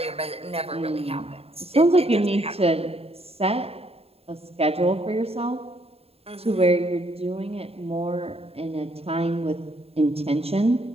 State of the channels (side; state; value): left; late; 0.29 ms